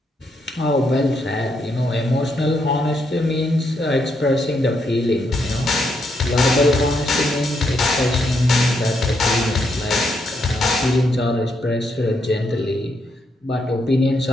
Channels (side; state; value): both; normal; correlation 0.78